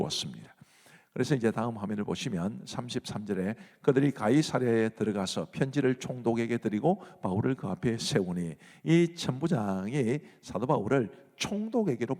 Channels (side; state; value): both; identical; correlation 1.00